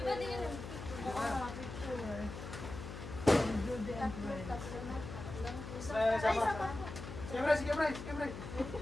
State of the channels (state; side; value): noise; left; hum, 9 dB below the sound